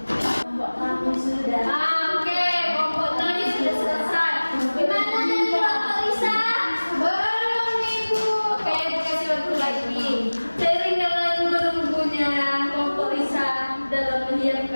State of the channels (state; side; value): inverted; both; correlation -1.00